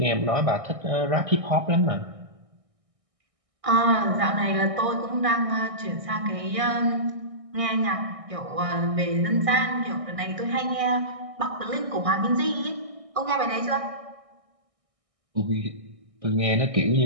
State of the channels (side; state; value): left; late; 1.6 ms